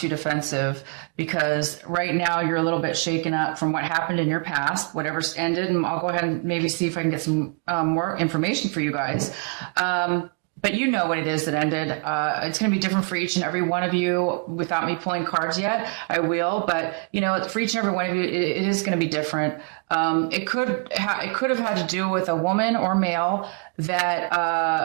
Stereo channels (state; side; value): quieter; left; 35.7 dB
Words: defensive because right now you're a little bit shaken up from what happened in your past, whatever's ended. And I'll go ahead and maybe see if I can get some more information for you guys. But you know what it is that ended. It's going to be different for each and every one of you without me pulling cards yet. I will, but for each and every one of you, it is going to be different. It could have had to do with a woman or male